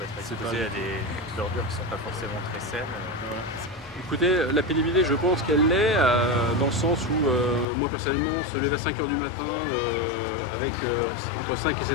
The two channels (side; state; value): right; drops out; at 7.7 s